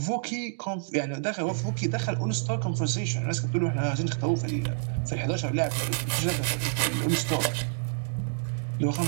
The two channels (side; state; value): left; silent; digital silence